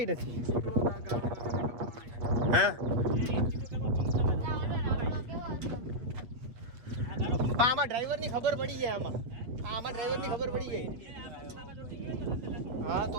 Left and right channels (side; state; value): left; late; 8.4 ms